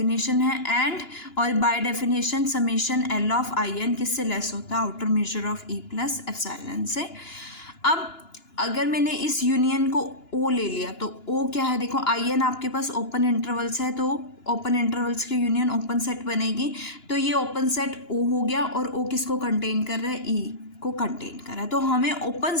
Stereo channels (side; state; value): right; late; 2.9 ms